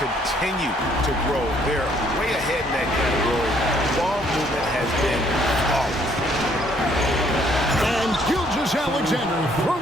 to grow. They're way ahead in that category. Ball movement has been flawless. And Gilgeous-Alexander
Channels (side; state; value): both; normal; correlation 0.65